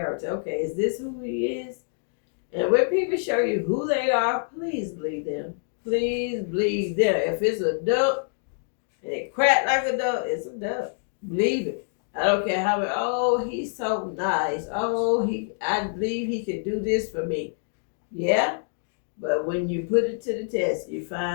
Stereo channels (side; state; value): right; silent; digital silence